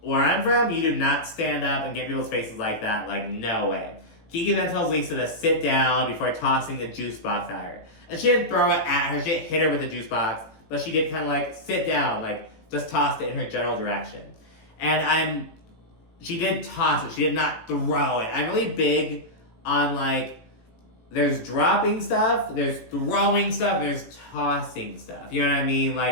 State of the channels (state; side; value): late; right; 18 ms